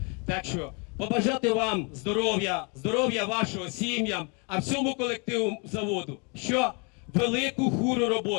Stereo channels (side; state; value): right; quieter; 34.0 dB